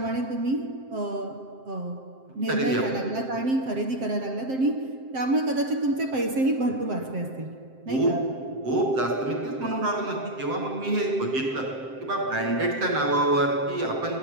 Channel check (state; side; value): late; left; 7.7 ms